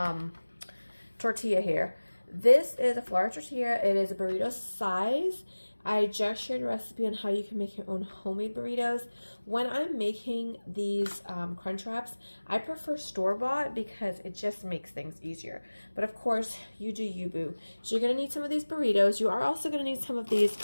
tortilla here. This is a flour tortilla. It is a burrito size. I just shared a recipe on how you can make your own homemade burritos. When I'm making these crunch wraps, I prefer store-bought because it just makes things easier. But of course, you do you, boo. So you're going to need some of these burritos. You are also going to need some of these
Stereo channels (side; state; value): both; inverted; correlation -1.00